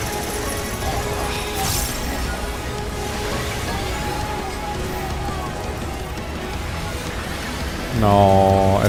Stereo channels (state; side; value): identical; both; correlation 1.00